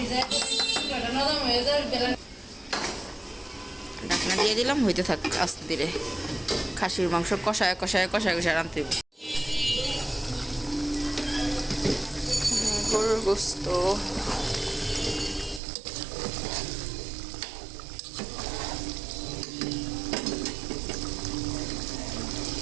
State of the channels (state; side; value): drops out; left; at 15.6 s